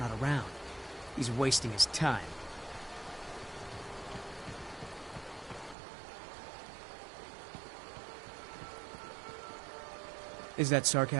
around. He's wasting his time. Is that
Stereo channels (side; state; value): left; drops out; at 5.8 s